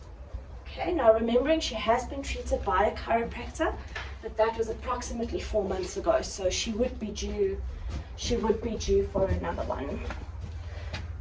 Okay, now remembering she has been treated by a chiropractor, but that was approximately 4 months ago, so she would be due for another one.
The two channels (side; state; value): both; identical; correlation 1.00